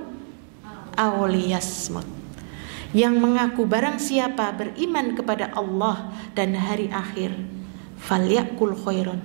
aw liyasmut. Yang mengaku barang siapa beriman kepada Allah dan hari akhir, falyakul khairan,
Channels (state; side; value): silent; left; 56 dB below the other